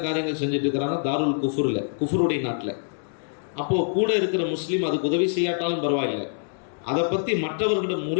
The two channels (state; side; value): silent; right; digital silence